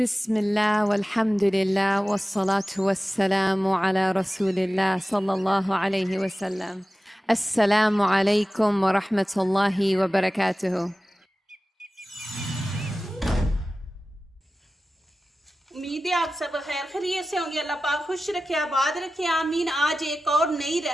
बिस्मिल्लाह वल्हम्दुलिल्लाह वस्सलातु वस्सलामु अला रसूलिल्लाह सल्लल्लाहु अलैहि वसल्लम। अस्सलामु अलैकुम व रहमतुल्लाहि व बरकातुहू। उम्मीद है आप सब खैर खैरियत से होंगे। अल्लाह पाक खुश रखे, आबाद रखे, आमीन। आज एक और नई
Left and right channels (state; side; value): normal; both; correlation 0.96